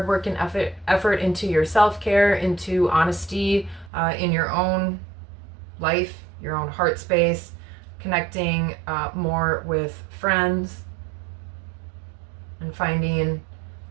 work and effort into your self-care, into honesty in your own life, your own heart space, connecting more with friends, and finding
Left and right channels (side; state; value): left; drops out; at 3.9 s